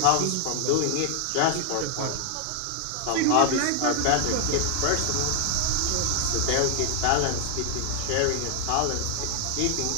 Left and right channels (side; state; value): both; different; correlation 0.00